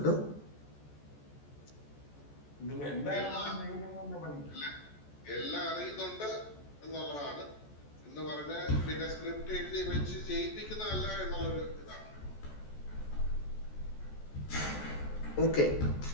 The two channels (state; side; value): late; right; 14 ms